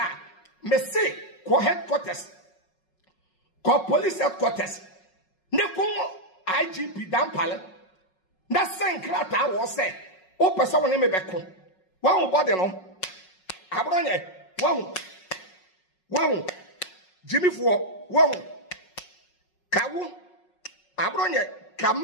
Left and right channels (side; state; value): right; late; 5.5 ms